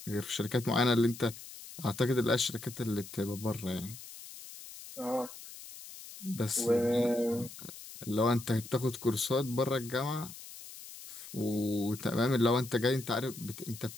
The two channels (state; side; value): noise; left; hiss, 14 dB below the sound